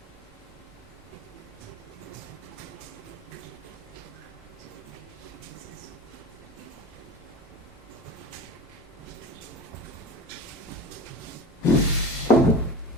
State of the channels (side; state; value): both; normal; correlation 0.34